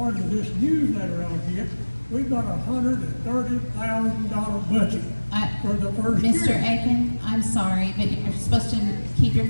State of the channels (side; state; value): both; inverted; correlation -1.00